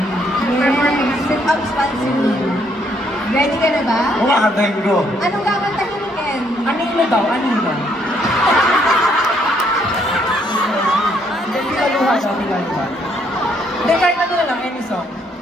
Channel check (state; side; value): normal; both; correlation 0.70